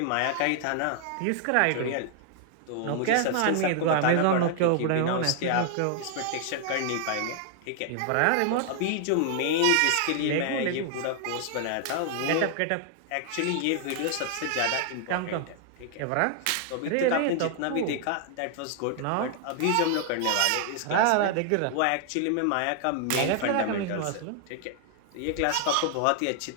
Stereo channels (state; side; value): different; both; correlation 0.00